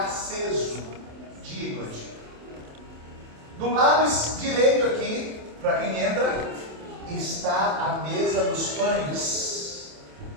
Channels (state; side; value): late; left; 27 ms